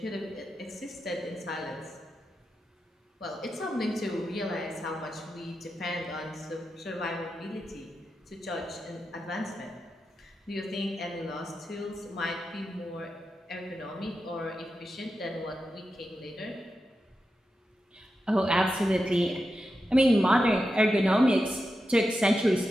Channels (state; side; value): normal; both; correlation 0.89